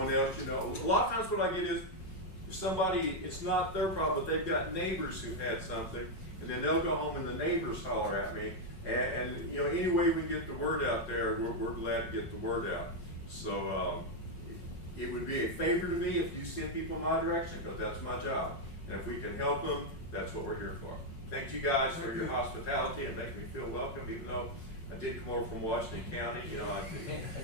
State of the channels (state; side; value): late; right; 5.5 ms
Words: else, you know, a lot of times what I get is, if somebody, it's not their problem, but they've got neighbors who had something, and then they'll go home and the neighbors holler at me. And you know, any way we get the word out there, we're glad to get the word out. So it would be a favor to me if you send people in my direction, because that's my job. And if we can help them, that's what we're here for. Thank you guys for your hospitality and making me feel welcome, even though I did come over from Washington County. You know, I